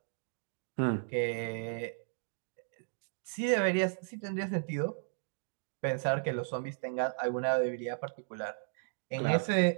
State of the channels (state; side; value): silent; left; digital silence